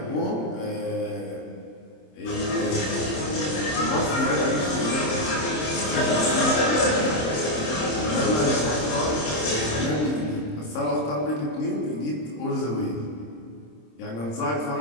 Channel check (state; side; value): late; right; 26 ms